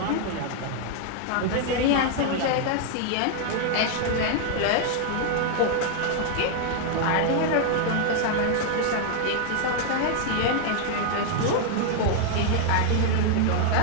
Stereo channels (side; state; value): both; different; correlation 0.00